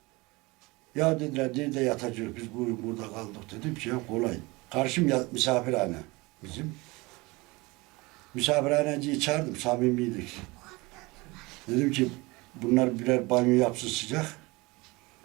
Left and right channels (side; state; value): left; quieter; 23.7 dB